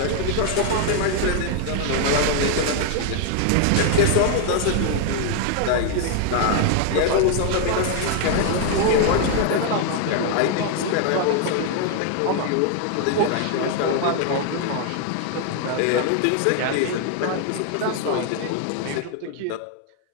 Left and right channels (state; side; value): different; both; correlation 0.00